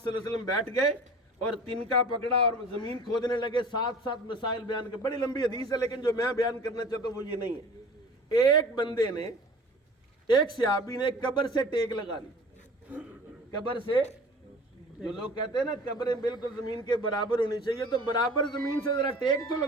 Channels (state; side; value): normal; both; correlation 0.43